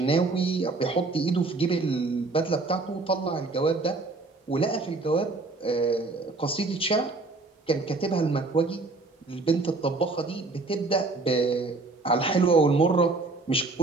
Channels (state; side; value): quieter; left; 3.5 dB